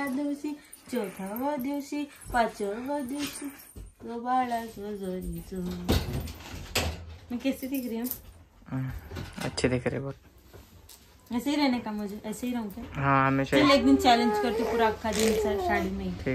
4व्या दिवशी 5व्या दिवशी तो बाळा जो जरी जो. मैं कैसी दिख रही हूँ. अच्छी दिख रही बहुत. ऐसे ही रहने का मुझे. ऐसे ही रहूँ क्या. हाँ हमेशा. चल एक दिन चैलेंज करती पूरा अक्खा दिन साड़ी में.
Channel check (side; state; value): both; identical; correlation 1.00